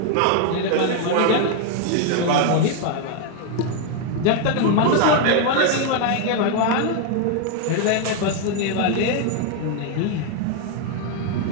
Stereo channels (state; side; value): different; both; correlation 0.01